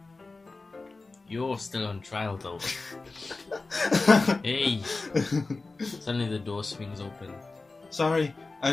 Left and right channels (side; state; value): right; quieter; 3.6 dB